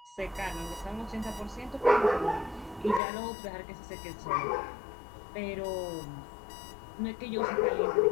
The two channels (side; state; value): right; drops out; at 3.0 s